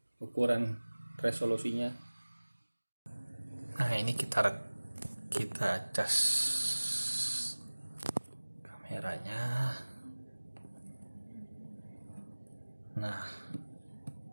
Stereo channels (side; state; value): both; inverted; correlation -1.00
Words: ukuran resolusinya. Nah, ini kita cas kamera. merahnya. Nah,